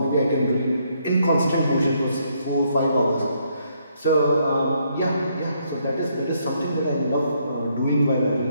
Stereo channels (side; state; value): both; inverted; correlation -0.72